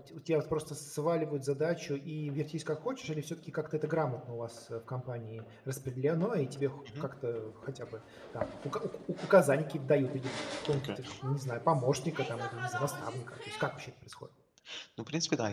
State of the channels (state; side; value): identical; both; correlation 1.00